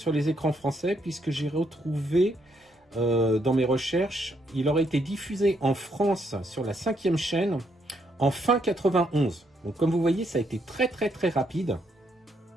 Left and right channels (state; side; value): normal; both; correlation 0.74